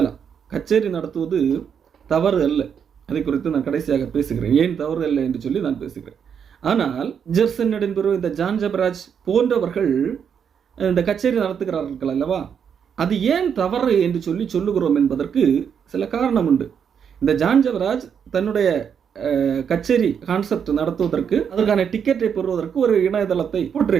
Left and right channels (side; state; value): left; quieter; 7.5 dB